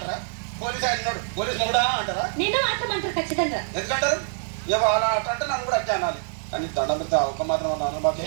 పోలీస్ ఆయన ఉన్నాడు, పోలీస్ మొగుడా అంటారా? ఖచ్చితంగా ఎందుకంటారు? అలా అంటే నన్ను కూడా అట్లా అనాలి. కానీ దండం పెడితే ఒక మాత్రం అన్నాను.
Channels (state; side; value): silent; left; 59 dB below the other